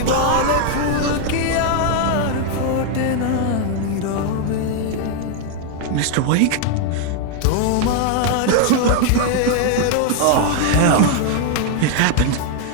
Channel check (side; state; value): both; different; correlation 0.00